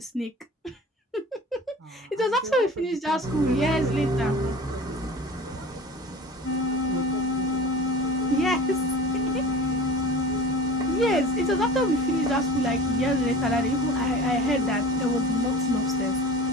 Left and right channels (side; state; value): both; normal; correlation 0.39